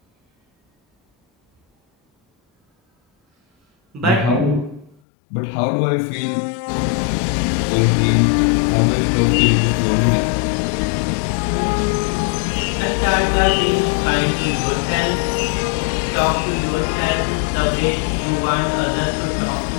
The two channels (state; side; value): drops out; right; at 5.0 s